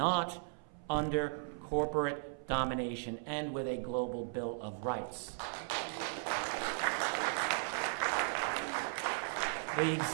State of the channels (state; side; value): silent; left; 53 dB below the other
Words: under corporate domination and with a global Bill of Rights. The